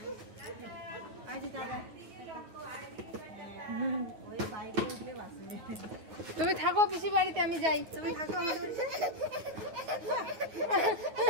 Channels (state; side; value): late; left; 9.3 ms